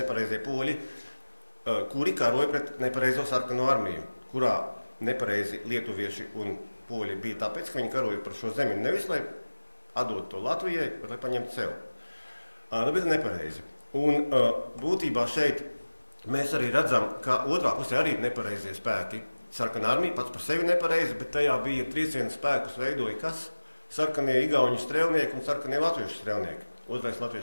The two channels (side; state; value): both; inverted; correlation -1.00